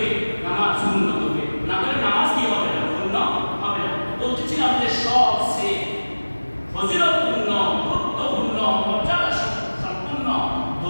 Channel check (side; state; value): both; inverted; correlation -1.00